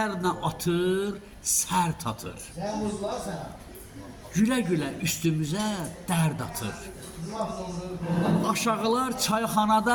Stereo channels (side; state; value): both; identical; correlation 1.00